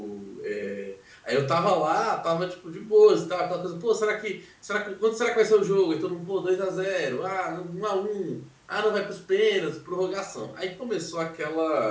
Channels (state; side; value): identical; both; correlation 1.00